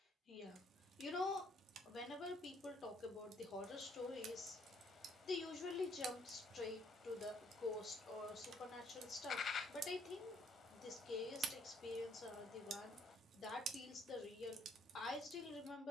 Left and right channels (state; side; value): normal; both; correlation 0.66